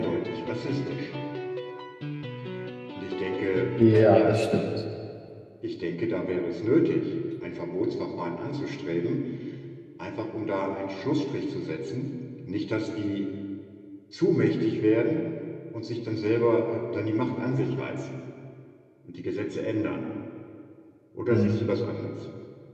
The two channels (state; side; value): identical; both; correlation 1.00